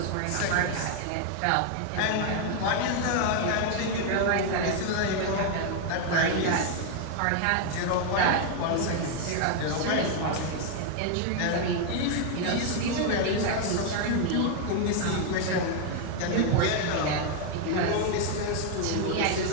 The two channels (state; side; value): different; both; correlation 0.00